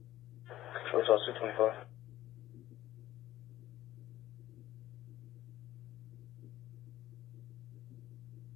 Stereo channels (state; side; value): quieter; right; 14.4 dB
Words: So it's also 225.